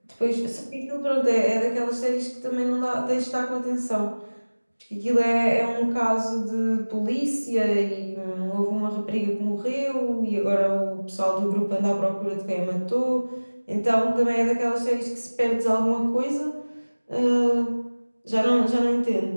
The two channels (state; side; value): inverted; both; correlation -1.00